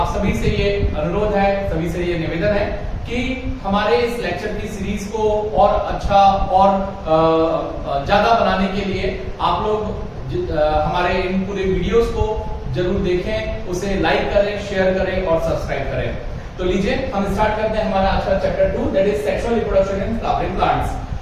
सभी से ये अनुरोध है, सभी से ये निवेदन है कि हमारे इस लेक्चर की सीरीज को और अच्छा और ज्यादा बनाने के लिए आप लोग हमारे इन पूरे वीडियोस को जरूर देखें, उसे लाइक करें, शेयर करें और सब्सक्राइब करें। तो लीजिए हम स्टार्ट करते हैं हमारा आज का chapter 2 that is sexual reproduction in flowering plants.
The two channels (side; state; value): both; identical; correlation 1.00